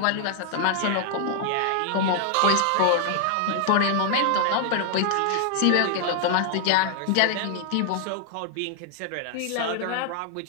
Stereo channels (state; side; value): different; both; correlation 0.00